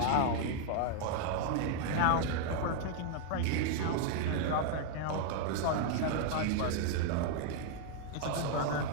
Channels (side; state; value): both; different; correlation 0.00